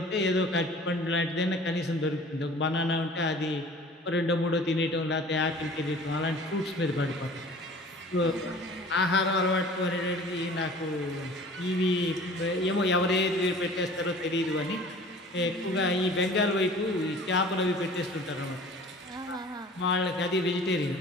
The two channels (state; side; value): normal; both; correlation 0.45